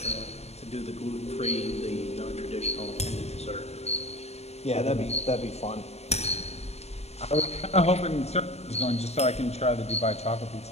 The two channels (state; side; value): late; right; 0.30 ms